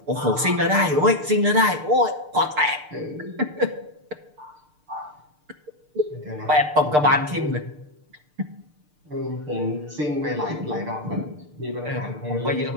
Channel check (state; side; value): late; left; 6.7 ms